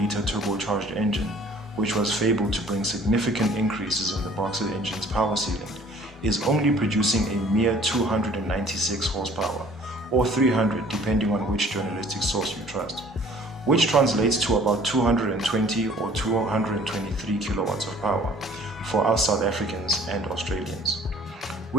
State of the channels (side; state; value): both; normal; correlation 0.53